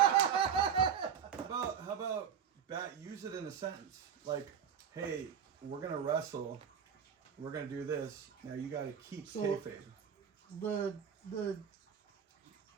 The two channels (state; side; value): quieter; left; 7.8 dB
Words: How about Bat? Use it in a sentence like, "Hey, we're gonna wrestle. We're gonna do this. Now you got to keep So- kayfabe."